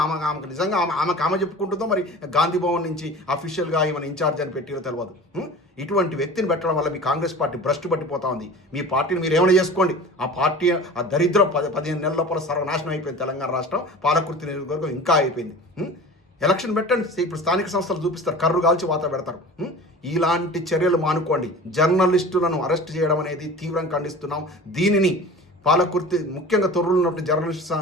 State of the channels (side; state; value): both; normal; correlation 0.38